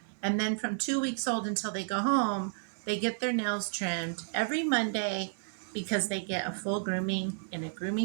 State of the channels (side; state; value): left; silent; 57 dB below the other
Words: And then from 2 weeks old until they go home, they get their nails trimmed every Monday because they get a full grooming in a